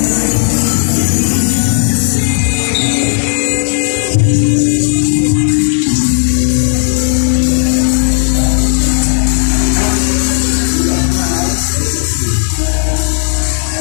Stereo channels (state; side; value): silent; right; digital silence